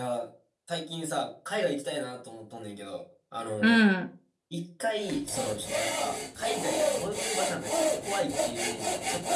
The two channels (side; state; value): both; identical; correlation 1.00